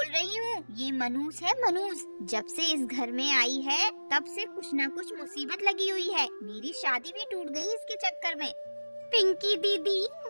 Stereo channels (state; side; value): inverted; both; correlation -1.00